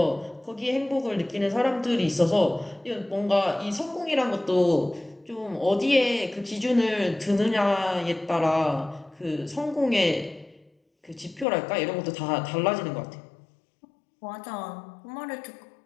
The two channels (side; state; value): right; drops out; at 11.5 s